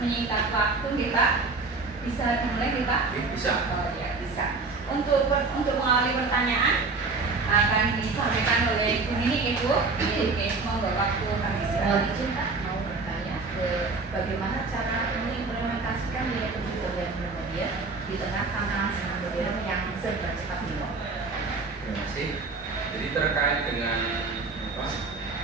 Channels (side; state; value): left; quieter; 4.0 dB